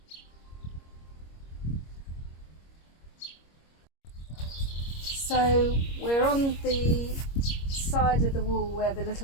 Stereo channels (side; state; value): right; late; 25 ms